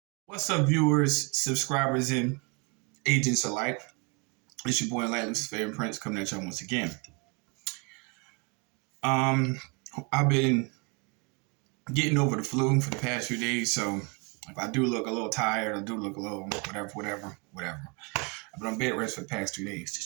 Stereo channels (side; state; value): left; quieter; 32.0 dB